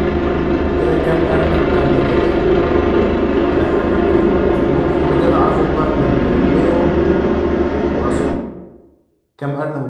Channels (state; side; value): identical; both; correlation 1.00